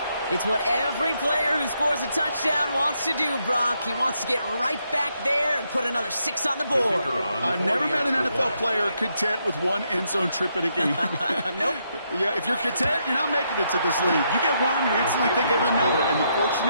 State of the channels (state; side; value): inverted; both; correlation -0.78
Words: It's what every player who scores a touchdown wants to do, Brock. He wants to get right back there and put another 6 on the board. I've never met an NFL player content with one end zone trip in a game. Nope. Yeah, if you're content, you're not making it to this league. You get one, you instantly think of another, and the